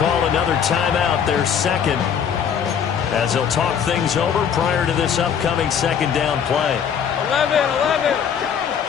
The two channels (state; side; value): quieter; right; 7.8 dB